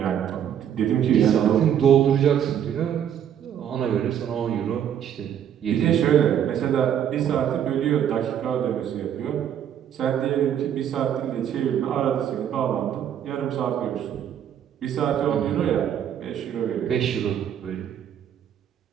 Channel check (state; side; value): quieter; left; 9.5 dB